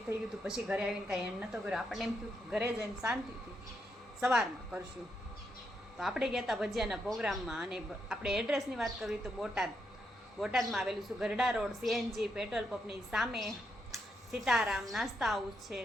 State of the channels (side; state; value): both; normal; correlation 0.80